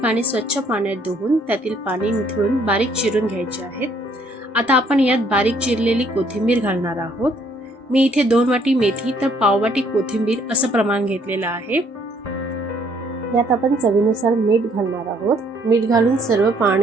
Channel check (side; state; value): both; normal; correlation 0.65